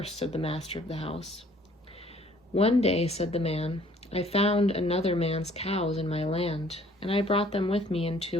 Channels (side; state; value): both; normal; correlation 0.58